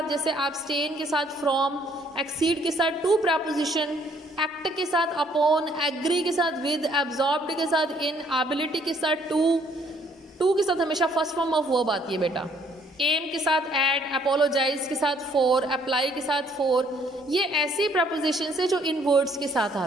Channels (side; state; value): both; normal; correlation 0.64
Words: जैसे एब्सटेन के साथ फ्रॉम, एक्सीड के साथ टू प्रपोजिशन, एक्ट के साथ अपॉन, एग्री के साथ विद, एब्जॉर्ब्ड के साथ इन, एबिलिटी के साथ टू के साथ हमेशा फर्स्ट फॉर्म ऑफ वर्ब आती है बेटा, एम के साथ एड, अपोलोजाइज के साथ फॉर, अप्लाई के साथ फॉर। ये ऐसी प्रपोजिशन है जो इन वर्ड्स के साथ